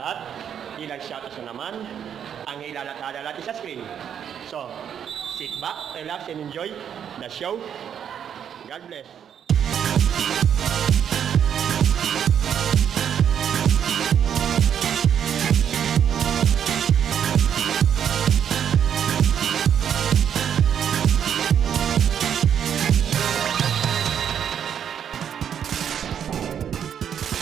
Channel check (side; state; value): left; quieter; 8.6 dB